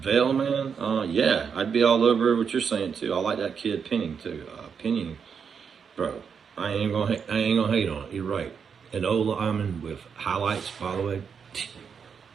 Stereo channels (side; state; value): left; quieter; 6.6 dB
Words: Vale, man. Yeah, I'd be all over what you're saying too. I like that kid Penning too. Penning, bro. I ain't gonna hate on it. You're right. An old lineman with highlights, by the way.